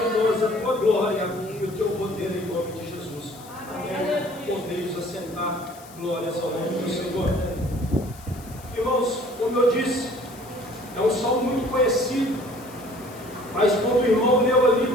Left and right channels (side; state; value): left; noise; hiss, 21 dB below the sound